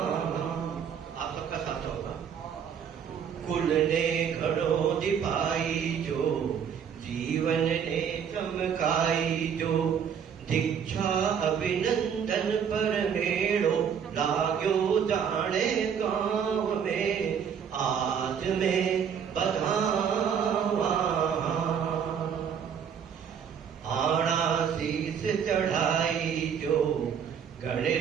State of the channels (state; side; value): quieter; left; 7.7 dB